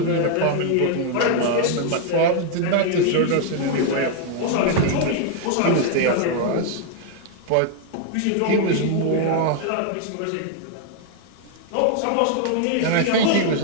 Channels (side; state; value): both; different; correlation 0.00